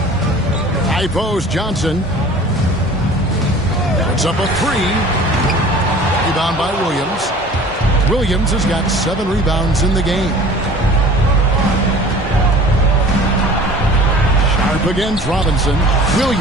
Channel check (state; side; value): normal; both; correlation 0.45